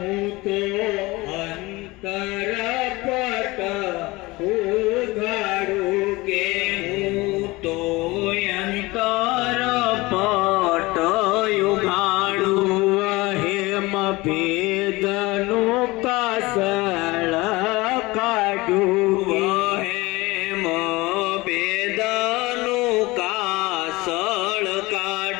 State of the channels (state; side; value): quieter; right; 21.8 dB